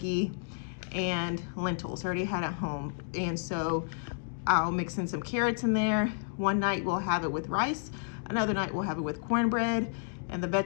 and lentils, already had at home. And so I'll mix in some carrots in there. One night we'll have it with rice. Another night we'll have it with cornbread. And the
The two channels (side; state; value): right; silent; digital silence